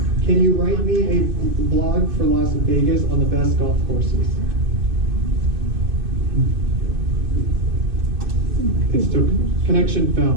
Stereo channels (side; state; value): left; late; 2.6 ms